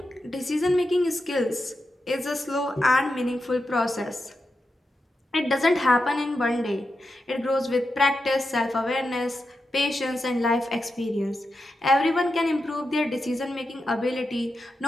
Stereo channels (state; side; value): normal; both; correlation 0.88